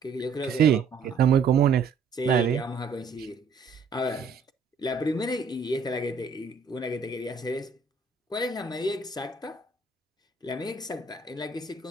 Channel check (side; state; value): left; quieter; 4.8 dB